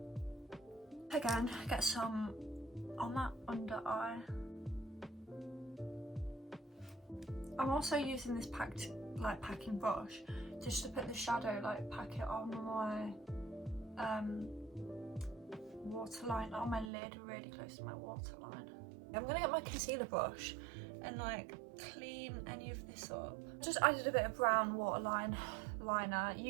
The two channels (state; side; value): drops out; left; at 16.9 s